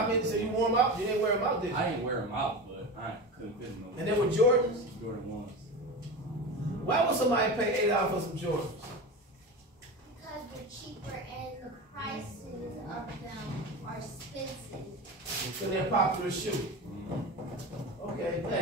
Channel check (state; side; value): normal; both; correlation 0.26